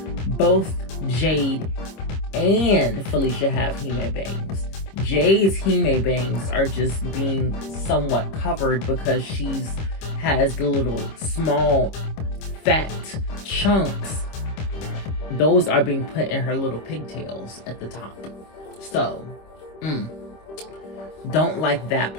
both Jade and Felecia have Hime bangs. Jade's Hime bangs are just being somewhat covered because has the little small fat chunks. Those are being put in her little pigtails at the top. So, don't like that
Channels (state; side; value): late; right; 26 ms